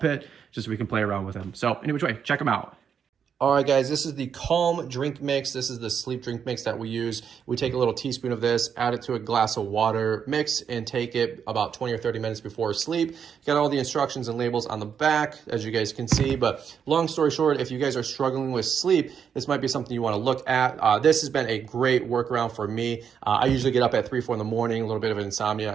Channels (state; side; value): quieter; left; 7.4 dB